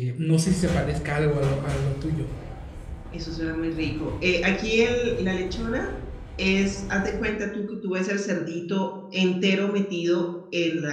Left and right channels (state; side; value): identical; both; correlation 1.00